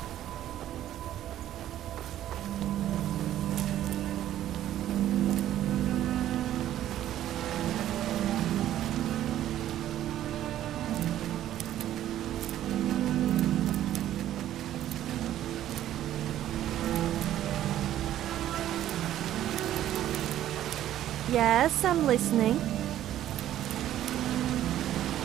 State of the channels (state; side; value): quieter; left; 12.4 dB